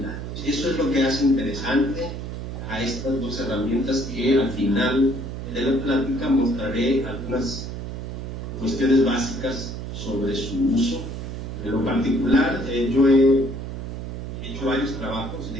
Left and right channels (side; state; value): right; noise; hum, 7 dB below the sound